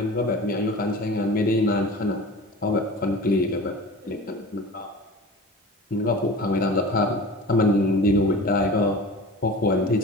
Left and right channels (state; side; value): normal; both; correlation 0.37